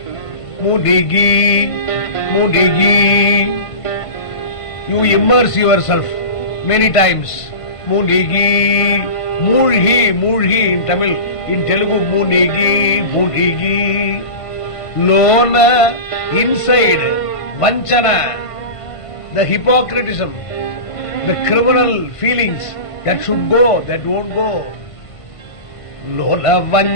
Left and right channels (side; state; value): right; late; 1.5 ms